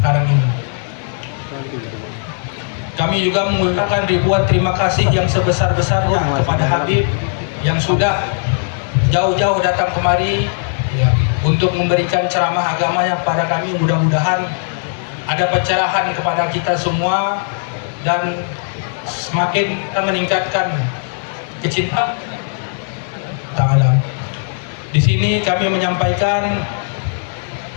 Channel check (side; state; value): right; silent; digital silence